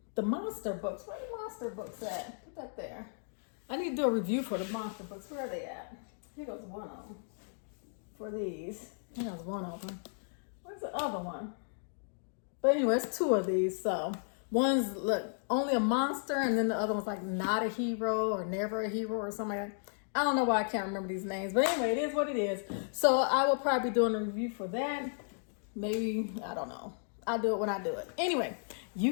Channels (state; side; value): silent; right; digital silence